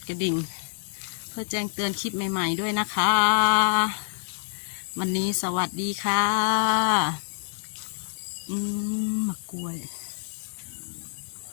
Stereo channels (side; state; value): right; silent; digital silence